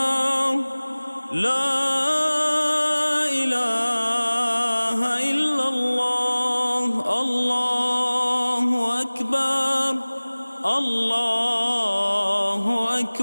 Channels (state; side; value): inverted; both; correlation -1.00